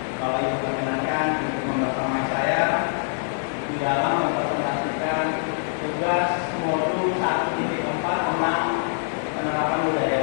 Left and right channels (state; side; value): silent; right; digital silence